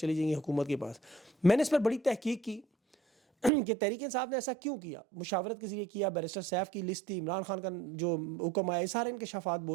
جائیں گی حکومت کے پاس. میں نے اس پر بڑی تحقیق کی کہ تحریک انصاف نے ایسا کیوں کیا، مشاورت کے ذریعے کیا، بیرسٹر سیف کی لسٹ تھی، عمران خان کا جو حکم آیا، سارے انکشافات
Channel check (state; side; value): drops out; left; at 3.5 s